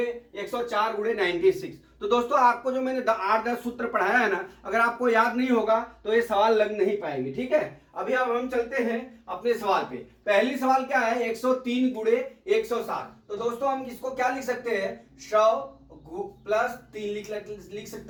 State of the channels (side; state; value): both; identical; correlation 1.00